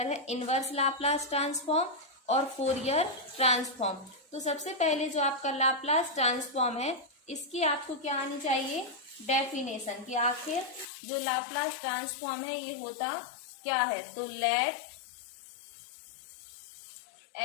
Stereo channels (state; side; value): drops out; right; at 10.9 s